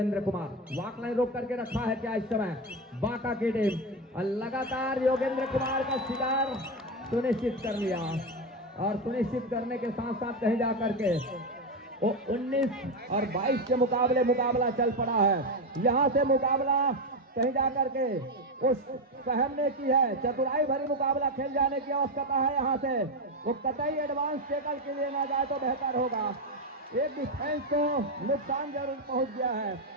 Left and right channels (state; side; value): normal; both; correlation 0.12